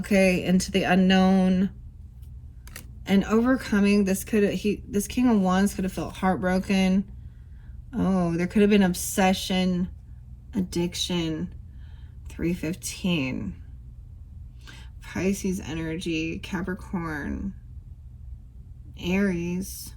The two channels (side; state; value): both; identical; correlation 1.00